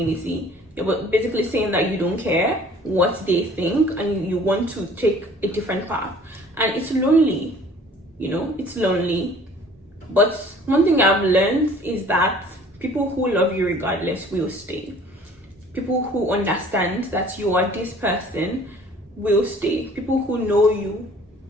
You're basically saying that you don't care what they think and you want to take a different path. And it's lonely, it's lonely. But one thing I've learned is that people who love you regardless will stay. People who understand that you are this person will stay. People who know you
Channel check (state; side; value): normal; both; correlation 0.52